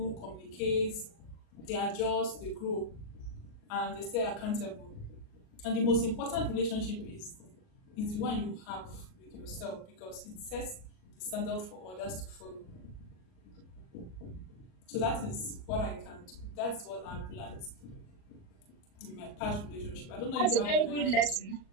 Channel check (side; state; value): right; late; 38 ms